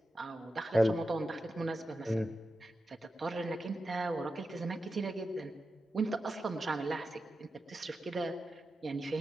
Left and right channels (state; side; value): normal; both; correlation 0.91